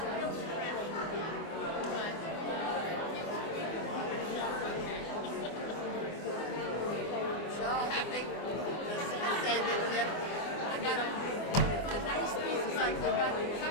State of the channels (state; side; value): late; right; 24 ms